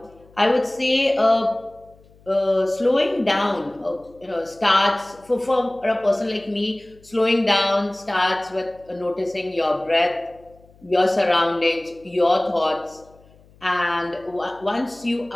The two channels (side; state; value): left; noise; hum, 28 dB below the sound